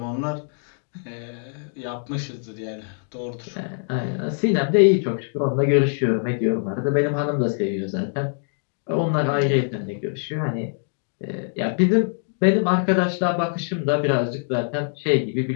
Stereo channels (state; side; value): silent; right; digital silence